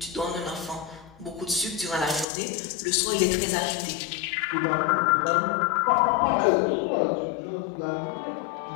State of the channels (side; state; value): right; drops out; at 2.2 s